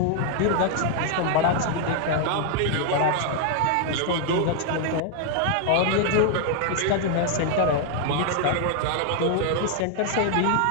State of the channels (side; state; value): both; different; correlation 0.00